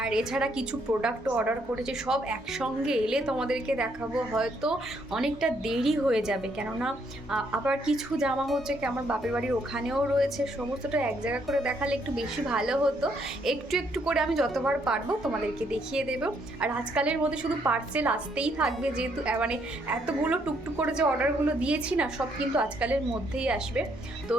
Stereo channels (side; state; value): both; normal; correlation 0.71